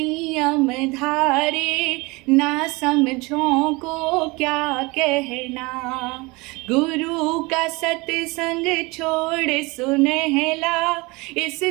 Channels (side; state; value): left; quieter; 24.8 dB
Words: धारे, ना समझों को क्या कहना। गुरु का सत्संग छोड़ सुनहला, इस